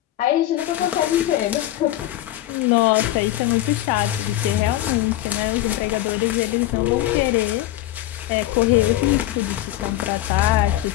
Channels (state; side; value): quieter; right; 14.6 dB